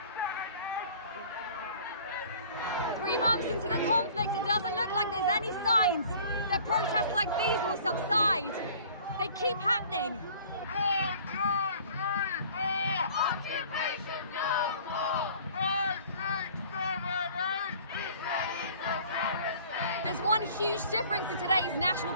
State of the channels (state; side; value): inverted; both; correlation -0.50